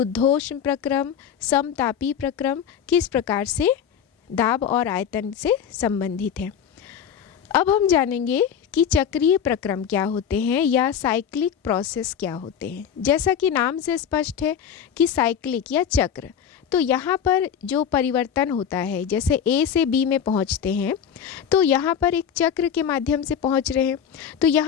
प्रक्रम, समतापी प्रक्रम किस प्रकार से दाब और आयतन से संबंधित है। अब हम जानेंगे कि चक्रीय प्रक्रम क्या होते हैं या साइक्लिक प्रोसेस क्या होते हैं। जैसा कि नाम से स्पष्ट है कि साइक्लिक या चक्र, तो यहाँ पर जो परिवर्तन होता है, जैसे ए से बी में पहुँचते हैं तो यहाँ पर एक चक्र के माध्यम से पहुँच रहे हैं। तो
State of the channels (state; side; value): quieter; right; 8.3 dB